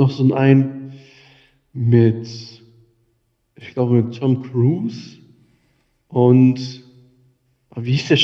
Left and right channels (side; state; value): both; identical; correlation 1.00